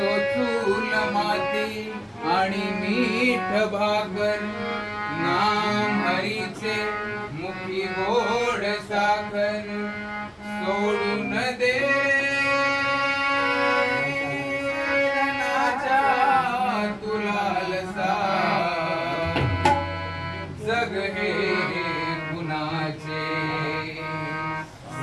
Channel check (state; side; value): identical; both; correlation 1.00